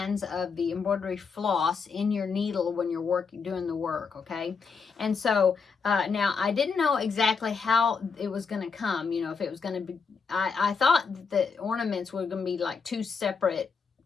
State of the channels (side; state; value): right; quieter; 5.4 dB